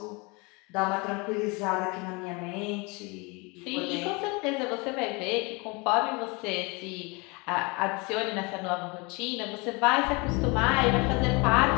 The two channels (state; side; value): quieter; right; 28.1 dB